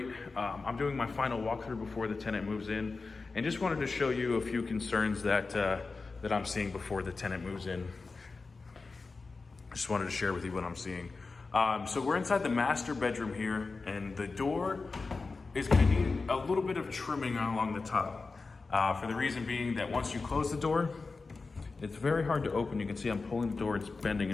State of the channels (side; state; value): right; quieter; 4.0 dB